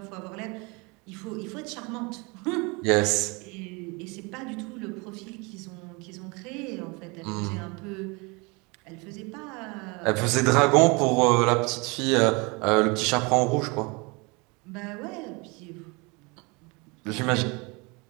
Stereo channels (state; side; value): quieter; left; 28.2 dB